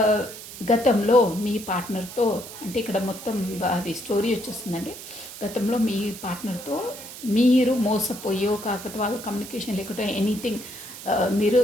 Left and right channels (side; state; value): right; noise; hiss, 13 dB below the sound